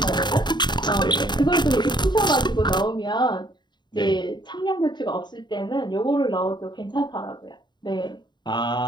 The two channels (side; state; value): right; late; 0.21 ms